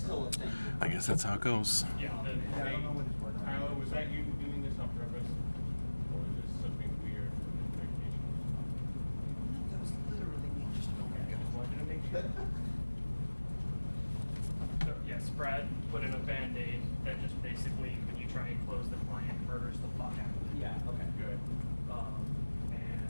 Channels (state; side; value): inverted; both; correlation -1.00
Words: a thing. I guess that's how it goes. Yeah, I don't know what it's working on. Tyler, was that you doing this on purpose? Or is this something weird from the vacation? That was literally me just Okay, I just wanted to make sure. So yes, Brad put in a Band-Aid that just basically, when you try and close the client, murders the fuck out of it. Yeah, okay. Good. And